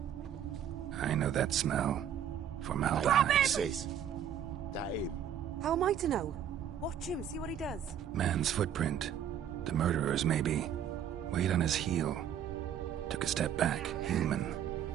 I know that smell. Formaldehyde. Sis, that him? How am I to know? Watch him, see what he does. Man's footprint. The murderer's, maybe. Weight on his heel. Took a step back. Human.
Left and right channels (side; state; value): left; quieter; 9.3 dB